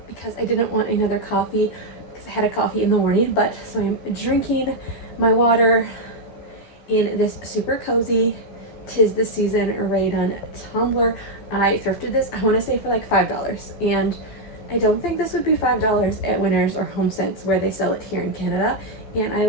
because I didn't want another coffee because I had a coffee in the morning, but so I'm drinking my water in this super cozy "'Tis the Season" Rakuten tumbler. I thrifted this, I want to say, for like $5, and I don't think this would be $5 at Winners or HomeSense where they sell it here in Canada. And I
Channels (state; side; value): late; right; 14 ms